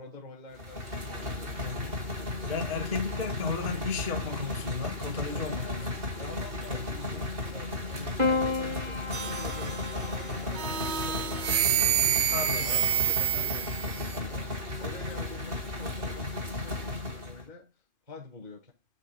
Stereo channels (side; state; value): left; late; 2.5 ms